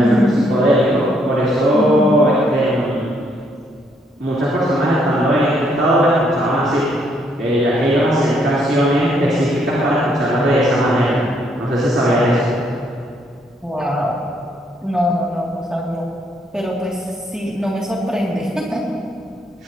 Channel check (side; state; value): both; normal; correlation 0.71